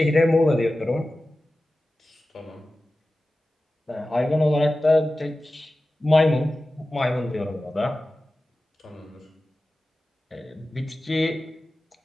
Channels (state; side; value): normal; both; correlation 0.95